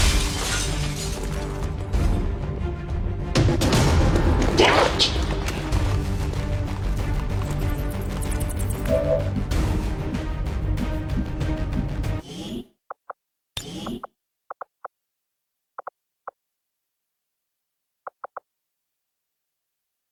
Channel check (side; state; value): both; identical; correlation 1.00